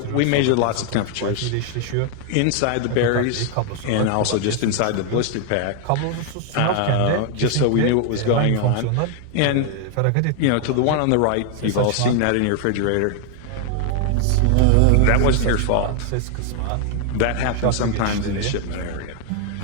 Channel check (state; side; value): different; both; correlation 0.00